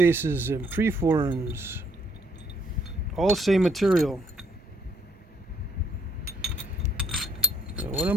and preforms, all same material. So what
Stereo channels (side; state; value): both; normal; correlation 0.67